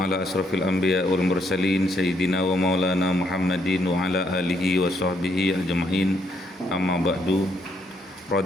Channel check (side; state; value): both; normal; correlation 0.73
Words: asrafil anbiya wal mursalin sayyidina wa maulana Muhammadin wa ala alihi wa sahbihi ajma'in. Amma ba'du.